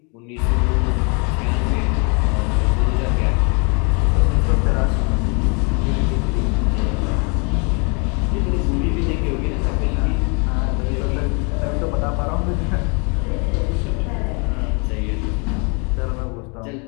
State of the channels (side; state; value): right; quieter; 34.2 dB